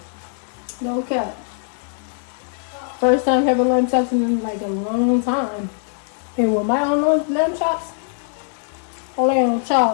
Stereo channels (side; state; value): right; silent; digital silence